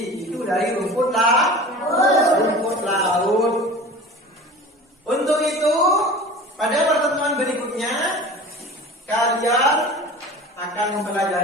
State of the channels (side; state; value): both; normal; correlation 0.38